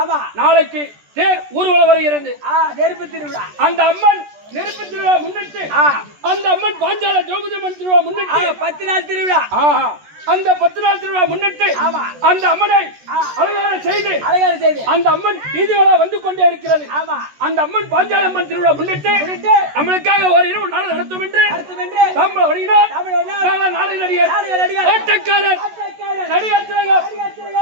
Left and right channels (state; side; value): late; left; 14 ms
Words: நாளைக்கு தேர் ஊர்வலம் வருகிறது. நெருப்பு திருவிழா. அந்த அம்மன் நெருப்பு திருவிழா முன்னிட்டு அந்த அம்மன் பாஞ்சால திரௌபதி அம்மன் திருவிழா முன்னிட்டு 10 நாள் திருவிழா. அந்த 10 நாள் திருவிழா முன்னிட்டு அந்த அம்மனை அலங்காரம் செய்து அந்த அம்மன் வீதிகளா வந்து கொண்டே இருக்கிறது. அந்த அம்மன் பாஞ்சால அம்மன் திருவிழா முன்னிட்டு நம்மளுக்காக ஒரு இரவு நாள் நடத்தும் என்று தமிழ் வணிகர் நாளை நடிகர் ஆட்டக்காரர் நடிகர்